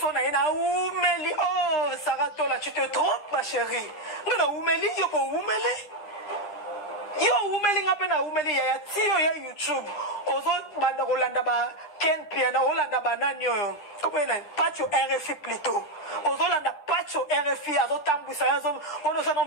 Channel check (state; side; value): late; right; 10 ms